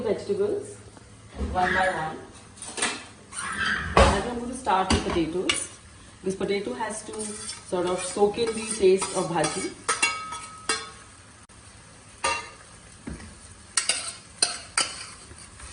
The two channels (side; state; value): both; identical; correlation 1.00